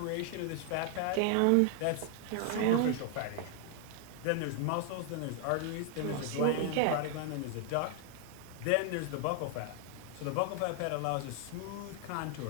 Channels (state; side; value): different; both; correlation 0.00